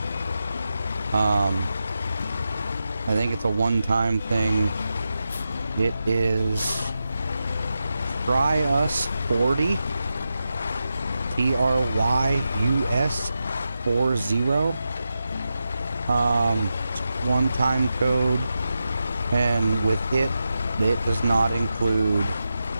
I think it's a one-time thing. It is Try Us 40, TRYUS 40. One-time code, and with it does not include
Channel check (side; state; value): both; inverted; correlation -0.90